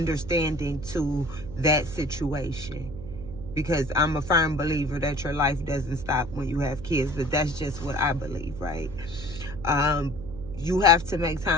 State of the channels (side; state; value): right; noise; hum, 12 dB below the sound